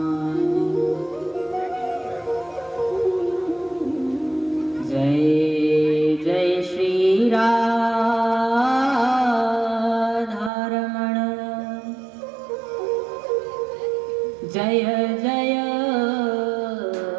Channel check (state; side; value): drops out; left; at 10.5 s